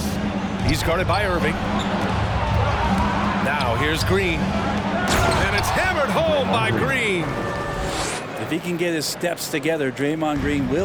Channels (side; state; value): both; identical; correlation 1.00